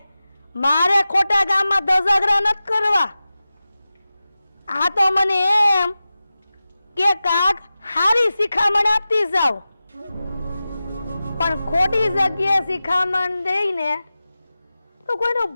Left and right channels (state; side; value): inverted; both; correlation -0.95